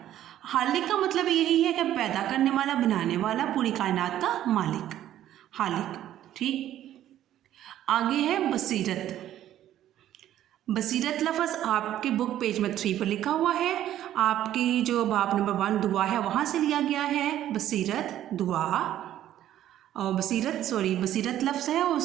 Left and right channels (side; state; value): left; quieter; 12.2 dB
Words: हालिक का मतलब यही है कि पैदा करने वाला, बनाने वाला, पूरी कायनात का मालिक, हालिक। ठीक, आगे है बसीरत। बसीरत लफ्ज़ आपके बुक पेज में 3 पर लिखा हुआ है। आपकी जो बाब नंबर 1 दुआ है वहाँ से लिया गया है बसीरत दुआ। और बसीरत लफ्ज़ है,